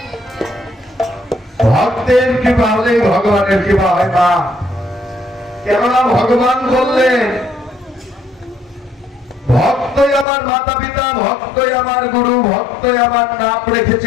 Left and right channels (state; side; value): drops out; right; at 10.2 s